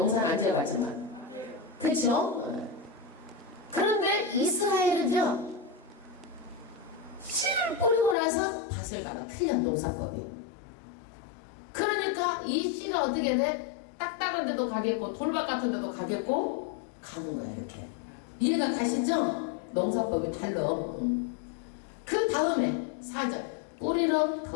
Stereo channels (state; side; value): drops out; right; at 8.2 s